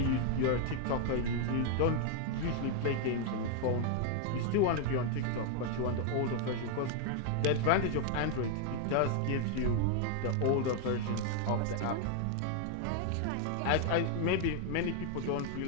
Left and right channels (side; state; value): both; different; correlation 0.00